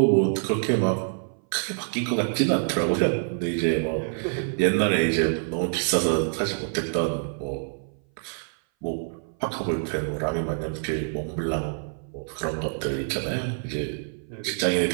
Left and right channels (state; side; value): silent; left; 58 dB below the other